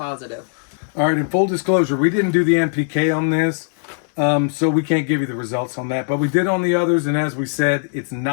All right, in full disclosure, we didn't do the NPK on this, so we can't give you the results on that. But we did on the others, and as we said, it's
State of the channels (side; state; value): right; silent; 64 dB below the other